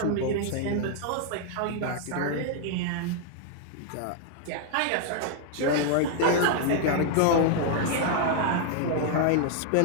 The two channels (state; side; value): different; both; correlation 0.00